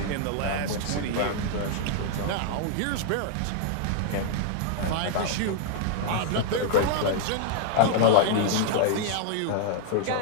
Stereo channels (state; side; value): different; both; correlation 0.00